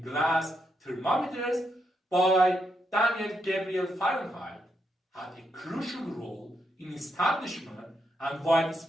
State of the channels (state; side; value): normal; both; correlation 0.81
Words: glass thermometers by Daniel Gabriel Fahrenheit had a crucial role in establishment and